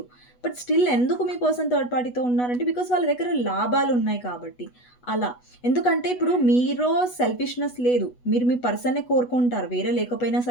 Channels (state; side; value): late; right; 8.1 ms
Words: బట్ స్టిల్ ఎందుకు మీ పర్సన్ థర్డ్ పార్టీతో ఉన్నారంటే బికాస్ వాళ్ళ దగ్గర లాభాలు ఉన్నాయి కాబట్టి అలా. ఎందుకంటే ఇప్పుడు మీలో సెల్ఫిష్నెస్ లేదు, మీరు మీ పర్సన్నే కోరుకుంటారు, వేరే లేకపోయినా